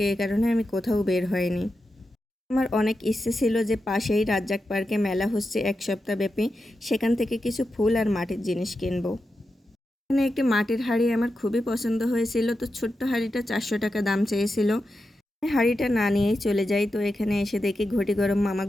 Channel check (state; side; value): normal; both; correlation 0.89